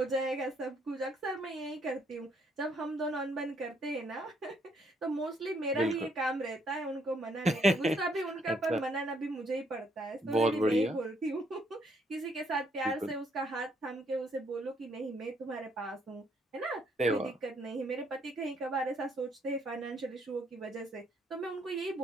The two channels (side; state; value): both; normal; correlation 0.70